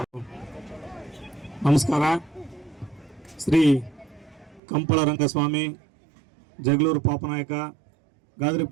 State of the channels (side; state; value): left; drops out; at 4.6 s